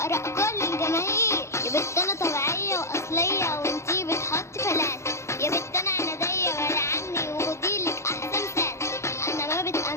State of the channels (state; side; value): late; right; 0.14 ms